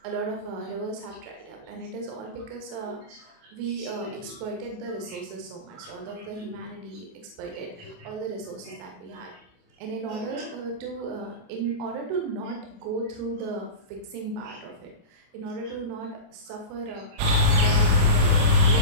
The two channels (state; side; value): late; left; 28 ms